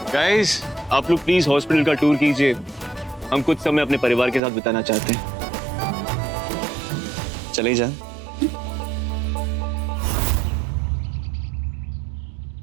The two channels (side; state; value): left; drops out; at 4.4 s